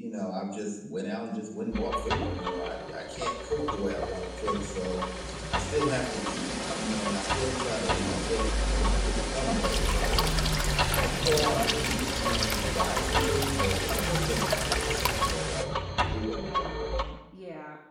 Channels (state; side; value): identical; both; correlation 1.00